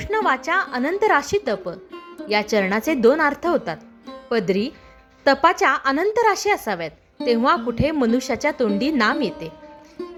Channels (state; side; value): identical; both; correlation 1.00